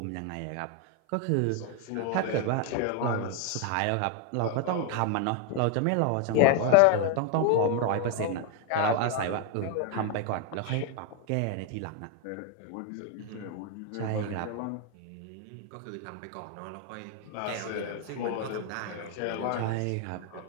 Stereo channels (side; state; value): both; different; correlation 0.01